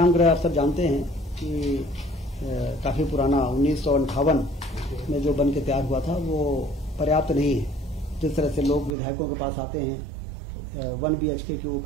गृह आप सब जानते हैं कि काफी पुराना 1958 में जो बन के तैयार हुआ था, वो पर्याप्त नहीं है। जिस तरह से लोग विधायकों के पास आते हैं, 1 BHK के वो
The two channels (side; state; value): left; drops out; at 9.0 s